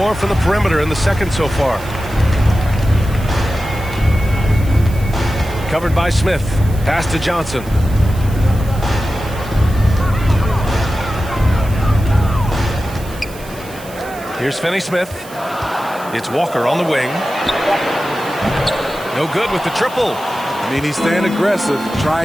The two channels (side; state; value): right; noise; hiss, 19 dB below the sound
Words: from the perimeter in the second so far. Covered by Smith. Pass to Johnson. Here's Finney Smith. It's Walker on the wing. No good with the triple. I mean, he's staying aggressive,